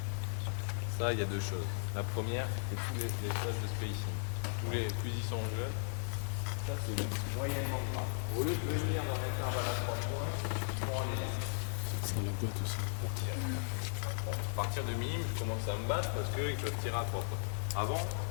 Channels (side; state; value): right; silent; digital silence